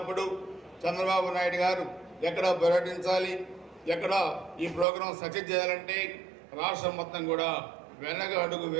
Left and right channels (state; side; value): drops out; left; at 4.9 s